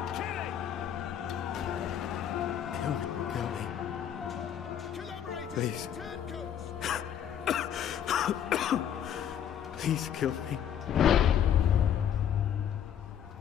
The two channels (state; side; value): quieter; right; 9.3 dB